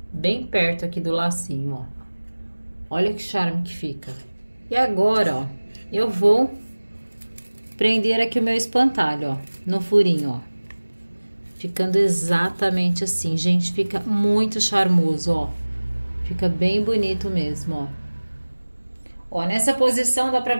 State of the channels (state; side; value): inverted; both; correlation -1.00